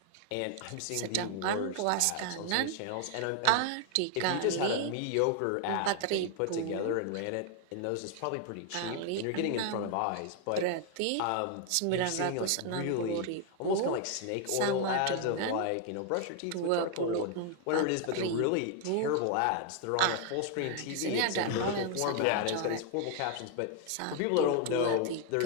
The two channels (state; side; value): different; both; correlation 0.00